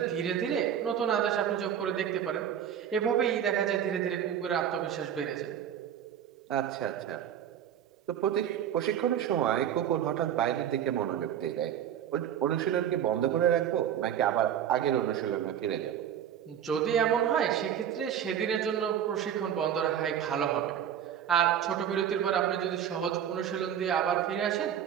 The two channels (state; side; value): quieter; left; 9.6 dB